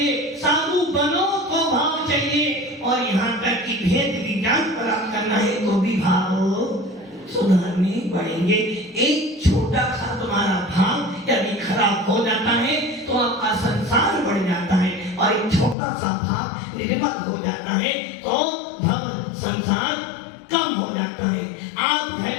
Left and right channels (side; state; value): right; drops out; at 15.8 s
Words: साधु बनो तो भाव चाहिए, और यहाँ तक कि भेद विज्ञान प्राप्त करना है तो भी भाव सुधारने पड़ेंगे। एक छोटा सा तुम्हारा भाव यदि खराब हो जाता है तो आपका संसार बढ़ जाता है, और एक छोटा सा भाव निर्मल हो जाता है तो भव संसार कम हो जाता है। आप